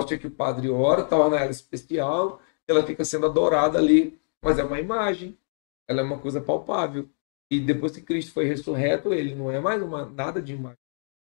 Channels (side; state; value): right; silent; digital silence